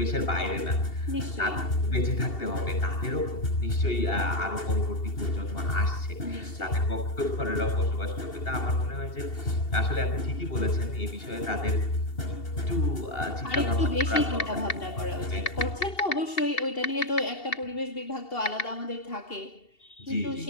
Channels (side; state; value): right; late; 2.7 ms